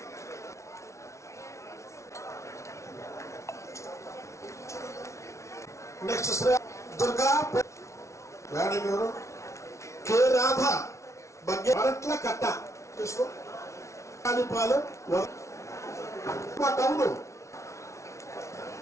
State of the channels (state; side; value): late; right; 0.14 ms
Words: నెక్స్ట్ శ్రీ దుర్గా మేడం ఎవరు? కె రాధ బగ్గే అరట్ల కట్ట తీసుకో. పాలు మా టౌను